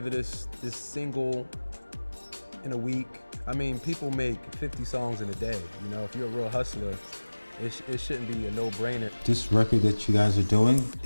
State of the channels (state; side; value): inverted; both; correlation -1.00